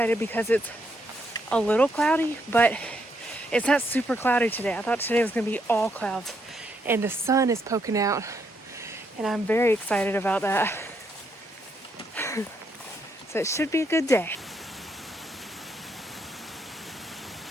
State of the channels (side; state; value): both; normal; correlation 0.76